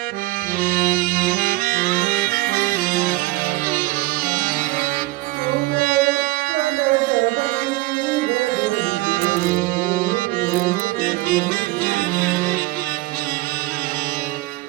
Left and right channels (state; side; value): quieter; left; 20.0 dB